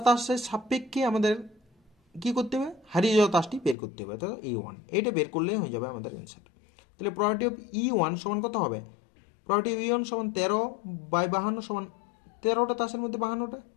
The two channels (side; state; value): right; drops out; at 3.8 s